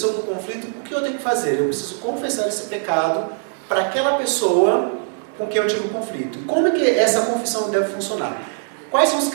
para o conflito, o que eu tenho que fazer? Eu preciso confessar esse pecado para aquela pessoa com quem eu tive um conflito. E como é que essa confissão deve funcionar? Quais são os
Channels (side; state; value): left; silent; digital silence